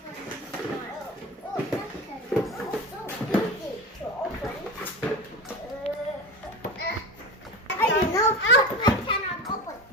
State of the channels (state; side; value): normal; both; correlation 0.26